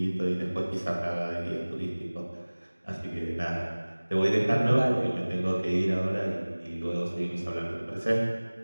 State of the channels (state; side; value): inverted; both; correlation -1.00